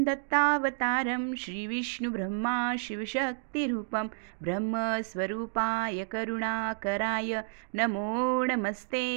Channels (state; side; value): silent; left; digital silence